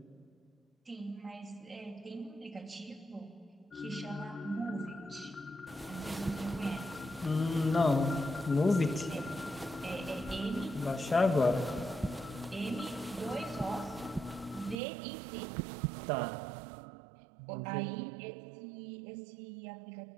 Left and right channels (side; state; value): left; drops out; at 14.8 s